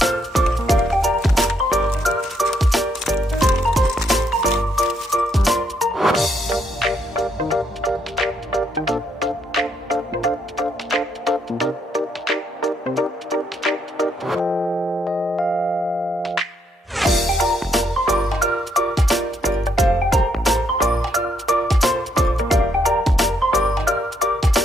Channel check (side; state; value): both; normal; correlation 0.74